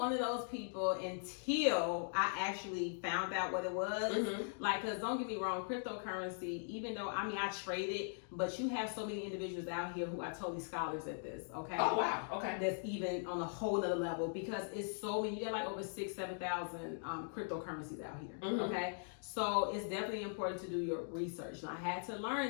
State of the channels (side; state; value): right; silent; digital silence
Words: of those people until I actually found out what it was. Because don't get me wrong, cryptocurrency, even though, I trade it, but you have so many individuals out here who are totally scholars at this, okay? Oh, wow, okay. That's even on a whole other level, because it's so many, you got like over 7,000 cryptocurrencies out here, okay? So it's definitely important to do your research. And I had to learn